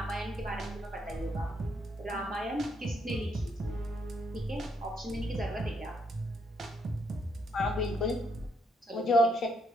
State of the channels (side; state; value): both; normal; correlation 0.74